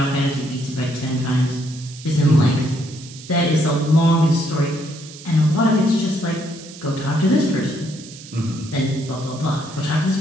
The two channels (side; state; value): right; noise; hiss, 17 dB below the sound